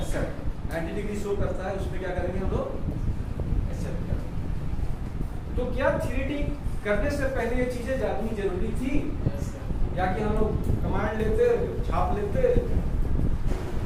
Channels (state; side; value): identical; both; correlation 1.00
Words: 90 degree show करता है, उसमें क्या करेंगे हम लोग? एक्सेप्ट करेंगे। तो क्या 3D करने से पहले ये चीजें जाननी जरूरी थी, या कि हम लोग कमांड लेते छाप लेते